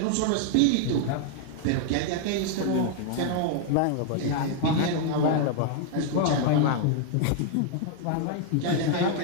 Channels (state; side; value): different; both; correlation 0.00